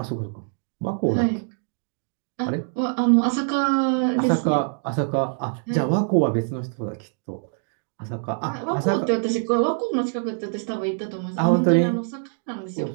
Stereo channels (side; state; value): left; silent; 62 dB below the other